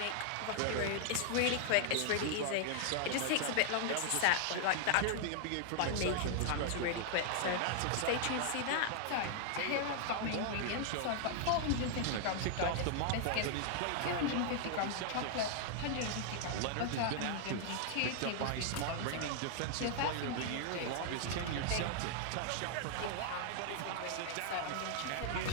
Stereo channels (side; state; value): both; different; correlation 0.00